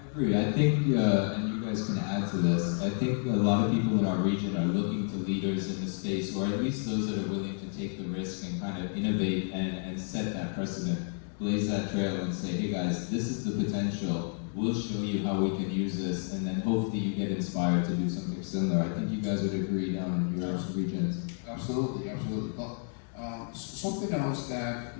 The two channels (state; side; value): silent; right; 56 dB below the other